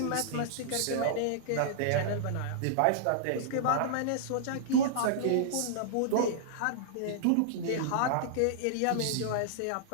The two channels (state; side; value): different; both; correlation -0.02